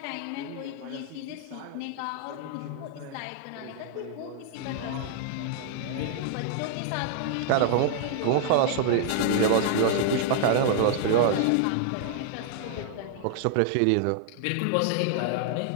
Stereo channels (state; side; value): different; both; correlation 0.00